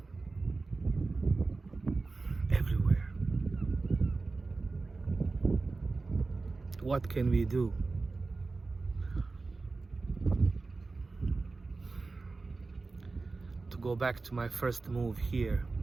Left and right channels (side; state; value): left; quieter; 3.7 dB